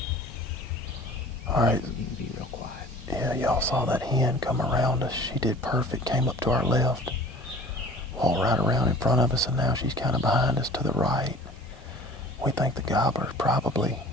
Alright. You can be real quiet. Yeah, y'all saw that hen come around us. She did perfect. Came up to our left. Walked right around in front of us, and now she's kind of behind us to the right. We think the gobbler's probably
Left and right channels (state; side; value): normal; both; correlation 0.46